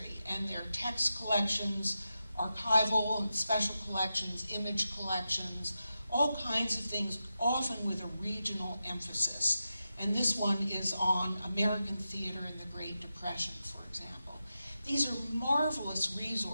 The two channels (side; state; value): both; inverted; correlation -0.90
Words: and their text collections, archival and special collections, image collections, all kinds of things, often with a regional emphasis. And this one is on American theater in the Great Depression, for example. These are marvelous